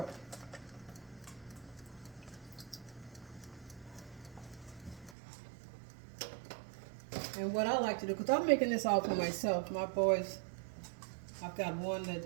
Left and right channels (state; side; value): drops out; left; at 5.2 s